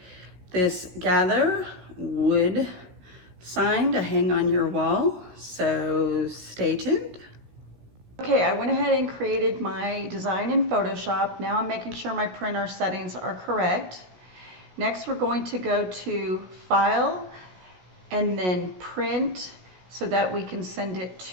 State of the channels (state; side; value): late; left; 16 ms